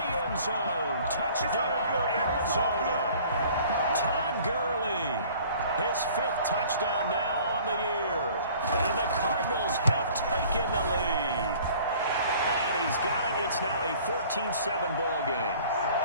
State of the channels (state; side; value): inverted; both; correlation -0.51